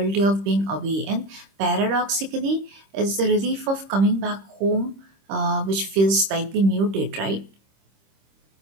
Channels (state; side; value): late; left; 26 ms